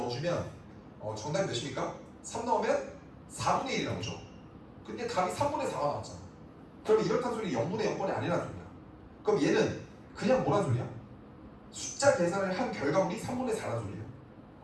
정답이 몇입니까? 3 넣으면 4분의 1이 나오죠. 근데 답이 3분의 4가 나왔잖아. 그러면 이렇다는 소리 0분의 0꼴이 아니라는 소리야. 그럼 얘는 그냥 뭐란 소리야? 숫자 계산을 한 결과물이 3분의 4라는 소리예요.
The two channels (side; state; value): both; identical; correlation 1.00